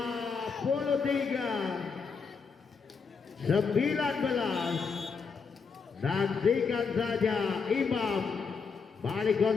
Nantikan saja Imam, balik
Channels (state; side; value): quieter; right; 5.4 dB